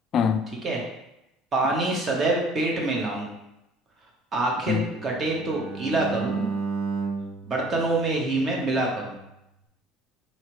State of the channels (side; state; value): both; normal; correlation 0.52